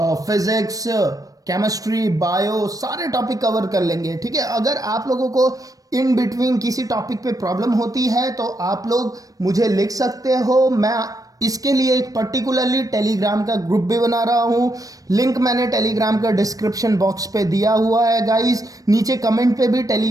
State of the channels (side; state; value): left; late; 0.17 ms